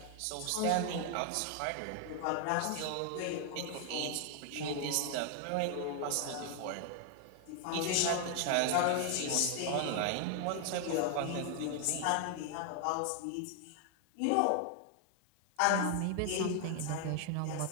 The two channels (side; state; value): both; different; correlation 0.00